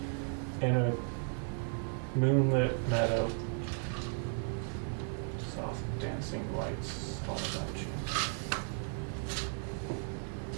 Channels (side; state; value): left; silent; 54 dB below the other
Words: in a moonlit meadow, soft dancing lights all about you.